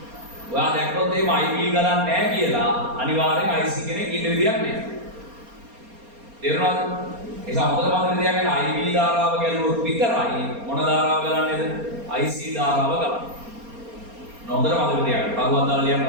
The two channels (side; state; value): left; late; 4.3 ms